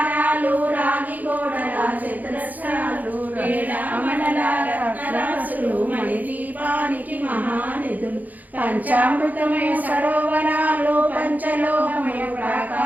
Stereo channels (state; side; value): late; left; 0.081 ms